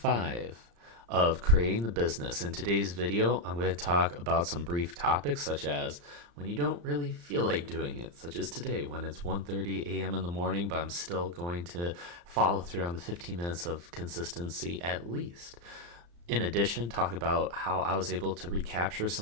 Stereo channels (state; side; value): late; left; 34 ms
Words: of creating the business. In today's video, I'm going to talk about some brief topics such as when you don't really feel like doing it, such as today when it's 1:30 a.m. in the morning, but I'm still going to follow through on the 15 minutes of consistency at least. In addition, talk about how I was able to recapture